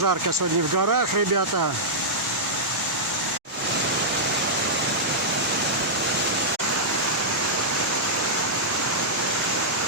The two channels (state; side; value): normal; both; correlation -0.11